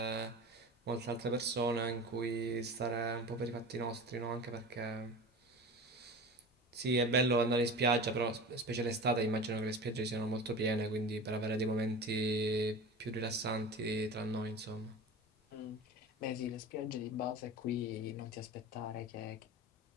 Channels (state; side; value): normal; both; correlation 0.33